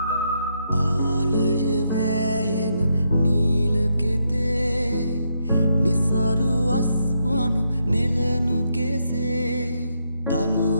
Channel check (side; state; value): both; inverted; correlation -0.79